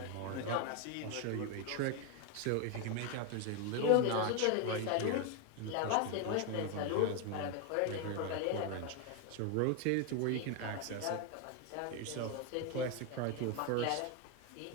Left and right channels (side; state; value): both; different; correlation 0.01